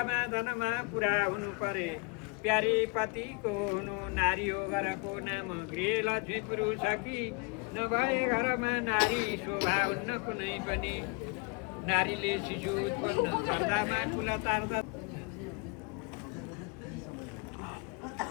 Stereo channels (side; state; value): right; quieter; 30.0 dB